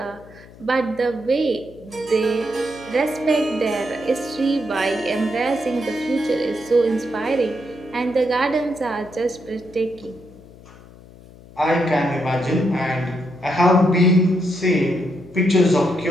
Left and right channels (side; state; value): left; noise; hum, 21 dB below the sound